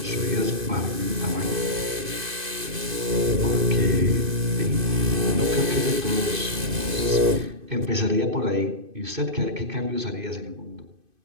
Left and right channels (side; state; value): left; late; 2.5 ms